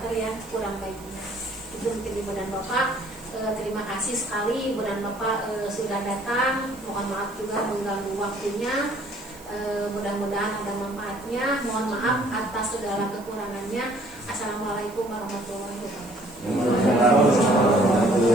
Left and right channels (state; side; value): noise; right; hiss, 22 dB below the sound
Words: yang kurang baiknya. Itu mungkin ibu dan bapak. Terima kasih sekali ibu dan bapak sudah datang. Mohon maaf juga mengganggu waktunya. Mudah-mudahan ada manfaatnya. Mohon maaf atas segala kekurangannya. Assalamualaikum warahmatullahi wabarakatuh.